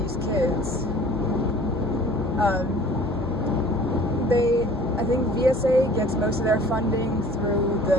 kids. I think VSA gets most of their funding through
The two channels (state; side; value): normal; both; correlation 0.49